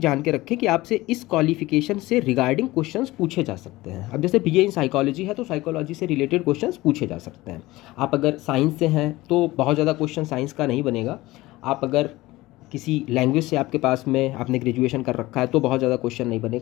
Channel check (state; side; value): quieter; right; 18.9 dB